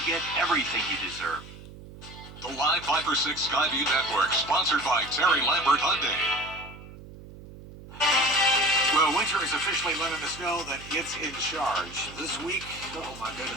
get everything you deserve. The Live 5 for 6 Skyview Network, sponsored by Terry Lambert Hyundai. Well, winter is officially letting us know that it's in charge. This week, oh my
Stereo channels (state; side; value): noise; right; hum, 16 dB below the sound